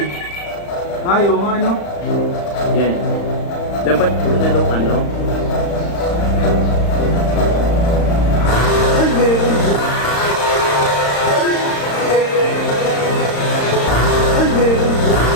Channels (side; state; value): right; late; 35 ms